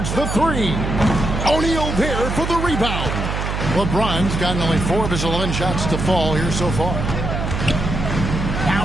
the three. O'Neal there for the rebound. LeBron's gotten only 4 of his 11 shots to fall here so far.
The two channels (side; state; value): right; noise; hum, 3 dB below the sound